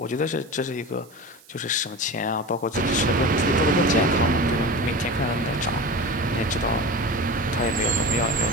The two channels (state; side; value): noise; right; hiss, 26 dB below the sound